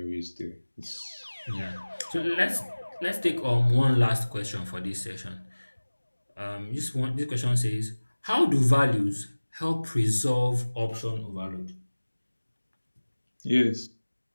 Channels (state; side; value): inverted; both; correlation -1.00